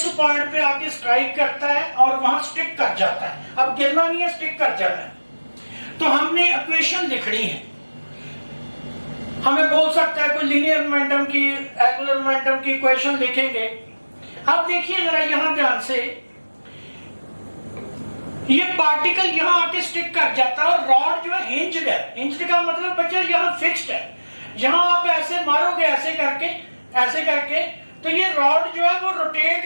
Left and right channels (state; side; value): inverted; both; correlation -1.00